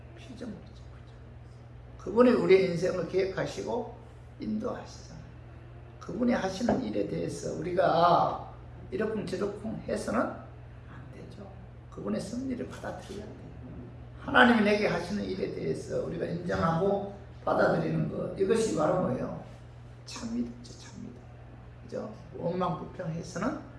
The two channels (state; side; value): identical; both; correlation 1.00